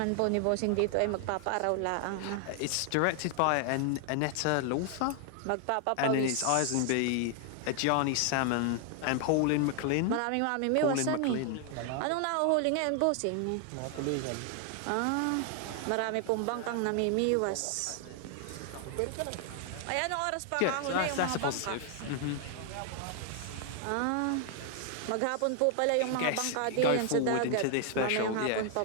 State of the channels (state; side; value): different; both; correlation 0.00